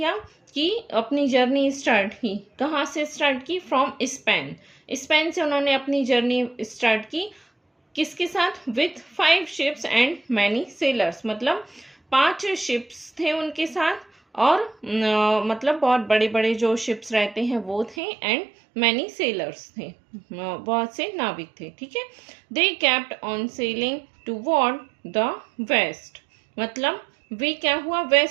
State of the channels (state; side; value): drops out; left; at 17.9 s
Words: कि अपनी जर्नी स्टार्ट की। कहाँ से स्टार्ट की? From Spain. स्पेन से उन्होंने अपनी जर्नी स्टार्ट की। किसके साथ? With 5 ships and many sellers. मतलब 5 शिप्स थे उनके साथ, और मतलब बहुत बड़े बड़े जो शिप्स रहते हैं वो थे, एंड मैनी सेलर्स थे, बहुत से नाविक थे। ठीक है, they kept on sailing toward the west. मतलब वे क्या हुआ?